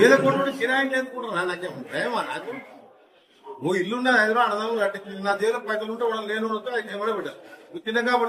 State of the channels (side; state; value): both; identical; correlation 1.00